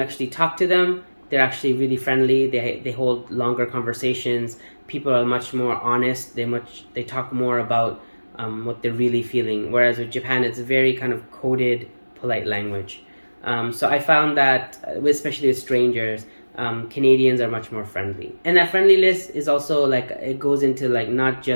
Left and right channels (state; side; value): inverted; both; correlation -1.00